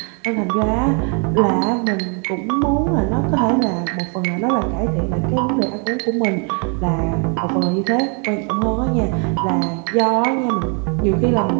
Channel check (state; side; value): quieter; left; 38.1 dB